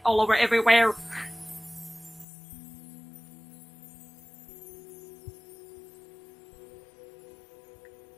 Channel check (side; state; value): right; drops out; at 2.2 s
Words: all over everywhere.